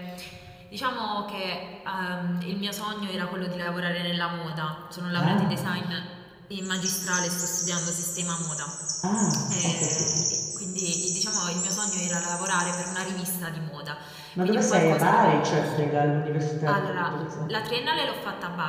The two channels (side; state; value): both; identical; correlation 1.00